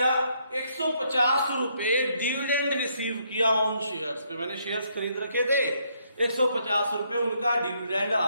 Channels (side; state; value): both; inverted; correlation -0.72